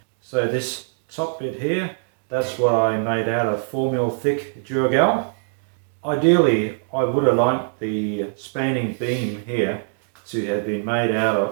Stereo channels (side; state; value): left; silent; digital silence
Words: So this top bit here, that's what I made out of 4mm thick Durgal. Ideally, I would have liked the spanning beam here to have been made out